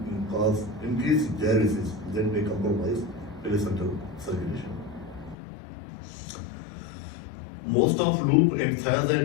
cause increased diuresis, that may compromise placental circulation. Most of loop and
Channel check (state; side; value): drops out; right; at 5.4 s